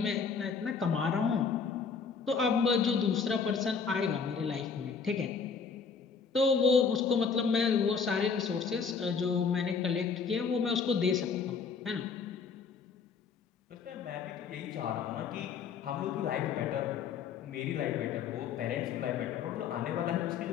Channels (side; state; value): right; quieter; 5.8 dB